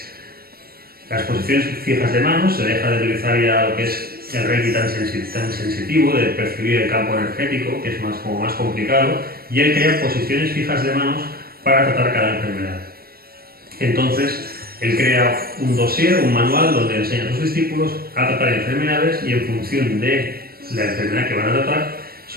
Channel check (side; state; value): left; late; 0.44 ms